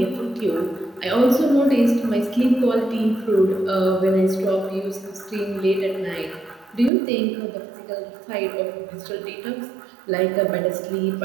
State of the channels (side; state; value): left; drops out; at 6.9 s